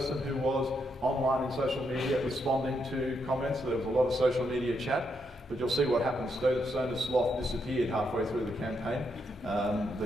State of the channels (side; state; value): both; normal; correlation 0.79